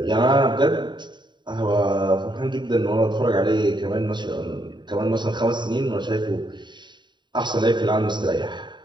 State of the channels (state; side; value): late; left; 0.22 ms